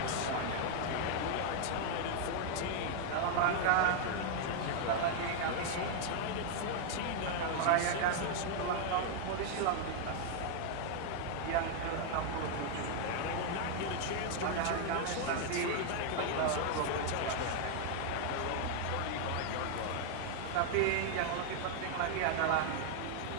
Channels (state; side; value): different; both; correlation 0.00